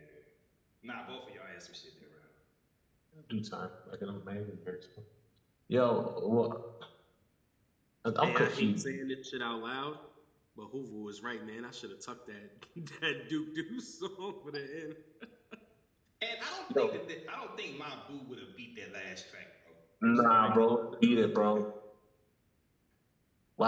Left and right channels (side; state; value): both; identical; correlation 1.00